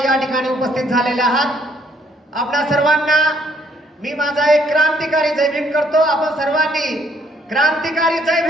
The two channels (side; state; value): both; normal; correlation 0.67